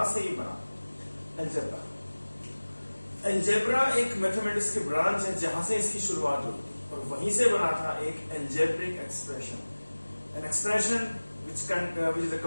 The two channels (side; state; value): both; inverted; correlation -1.00